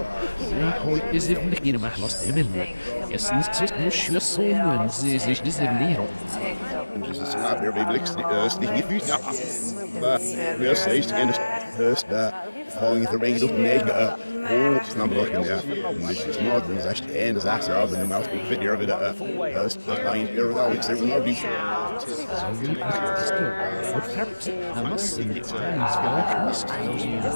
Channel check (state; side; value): inverted; both; correlation -1.00